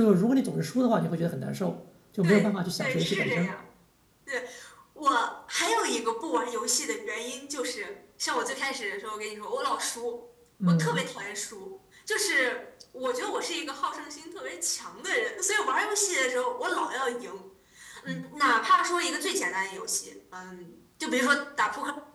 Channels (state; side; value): identical; both; correlation 1.00